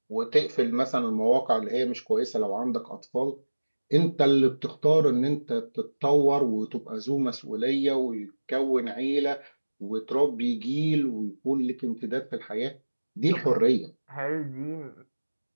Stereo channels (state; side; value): inverted; both; correlation -1.00